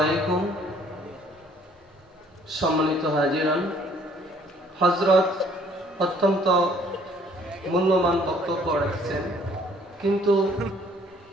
সম্মানিত হাজিরান, হযরত অত্যন্ত মূল্যবান বক্তব্য রাখছেন, কিন্তু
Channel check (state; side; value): normal; both; correlation 0.60